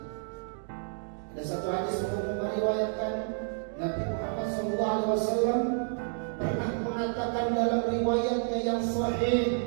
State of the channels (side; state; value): left; silent; digital silence